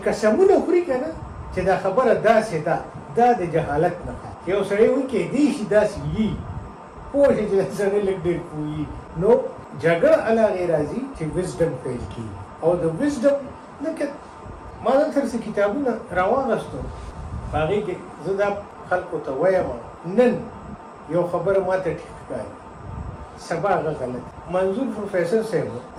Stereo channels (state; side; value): identical; both; correlation 1.00